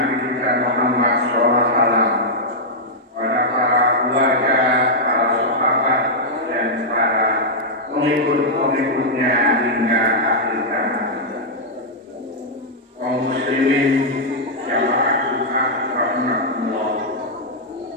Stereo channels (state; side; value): normal; both; correlation -0.06